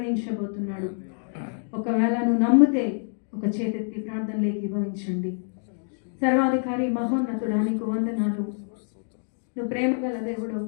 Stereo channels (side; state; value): right; silent; digital silence